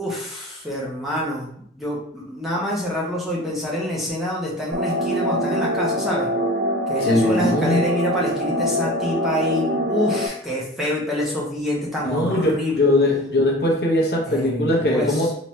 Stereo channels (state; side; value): normal; both; correlation 0.38